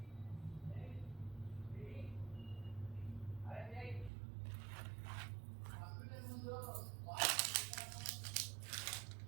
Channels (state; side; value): drops out; left; at 4.1 s